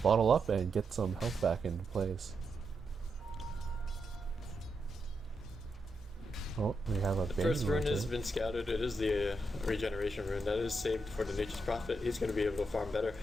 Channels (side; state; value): both; normal; correlation 0.84